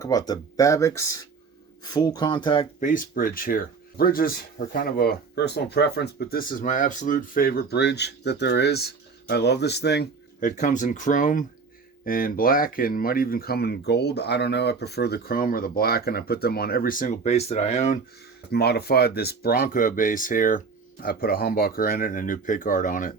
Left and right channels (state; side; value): quieter; left; 4.9 dB